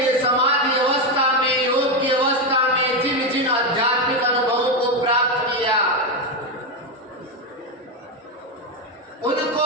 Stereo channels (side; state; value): both; normal; correlation 0.09